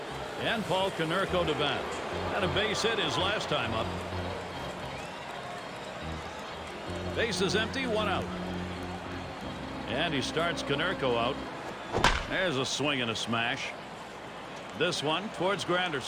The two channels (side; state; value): both; identical; correlation 1.00